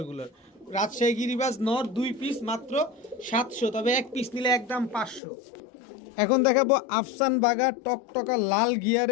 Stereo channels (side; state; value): right; drops out; at 5.2 s